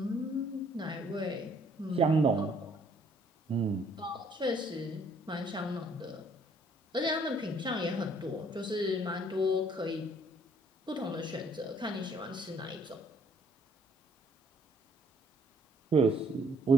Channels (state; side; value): normal; both; correlation 0.63